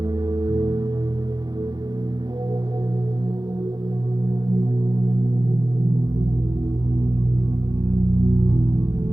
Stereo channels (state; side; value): late; left; 0.20 ms